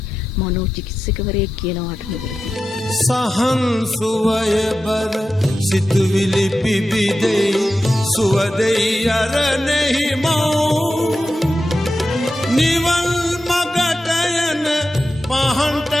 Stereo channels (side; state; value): both; normal; correlation 0.91